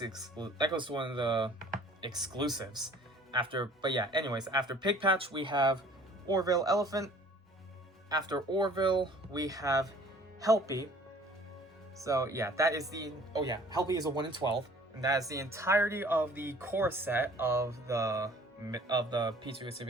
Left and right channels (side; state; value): both; normal; correlation 0.51